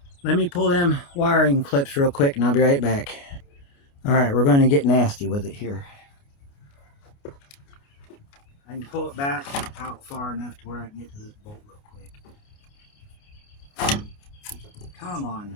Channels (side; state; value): right; late; 29 ms